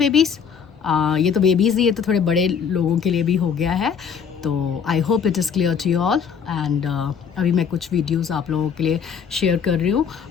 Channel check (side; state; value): right; quieter; 7.0 dB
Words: ये तो बेबीज़, ये तो थोड़े बड़े लोगों के लिए भी हो गया है, तो I hope it is clear to you all. And अभी मैं कुछ वीडियोस आप लोगों के लिए शेयर कर रही